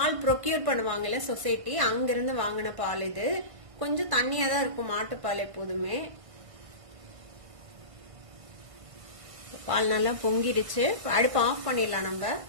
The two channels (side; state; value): left; late; 1.5 ms